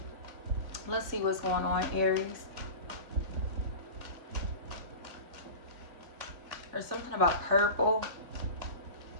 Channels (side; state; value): left; late; 2.3 ms